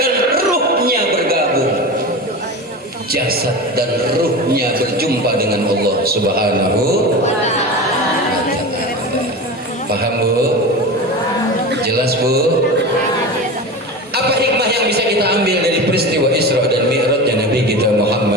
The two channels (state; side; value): normal; both; correlation 0.28